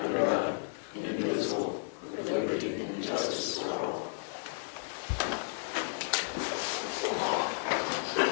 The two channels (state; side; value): silent; right; digital silence